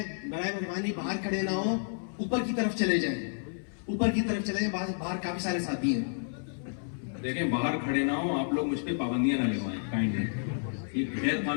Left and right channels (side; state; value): right; silent; 57 dB below the other